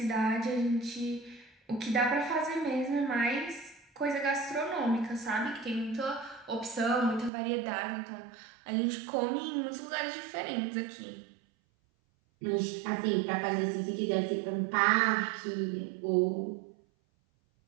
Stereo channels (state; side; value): drops out; left; at 7.3 s